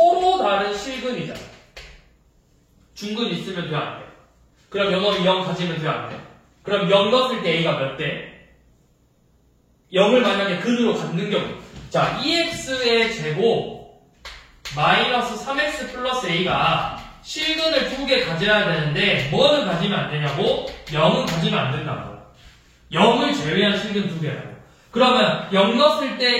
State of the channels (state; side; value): identical; both; correlation 1.00